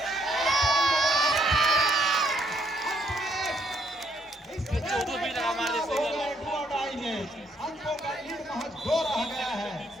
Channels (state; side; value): normal; both; correlation 0.72